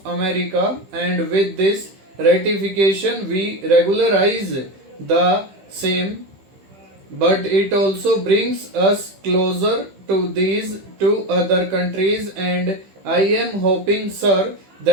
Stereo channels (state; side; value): late; left; 15 ms